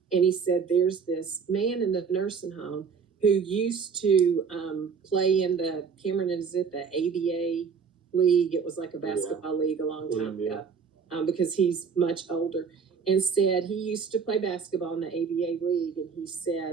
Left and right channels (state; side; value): quieter; left; 6.0 dB